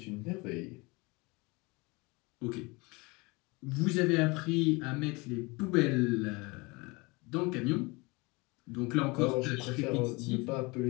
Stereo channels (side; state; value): right; quieter; 25.9 dB